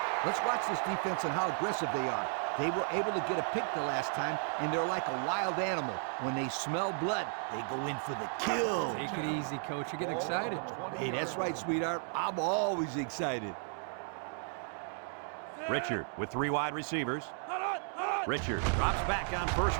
Let's watch this defense and how aggressive they are. They were able to get a pick the last time, and they're like a wild animal. When they smell blood, they go in for the kill. Take it easy, Coach. You get excited. Hey, that's right, sweetheart. I'm always excited. Richard with 3 wide receivers. Richard drops back on first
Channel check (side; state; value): left; silent; 55 dB below the other